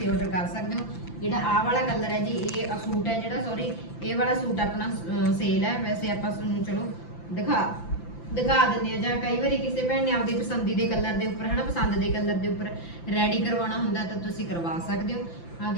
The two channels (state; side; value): late; right; 5.9 ms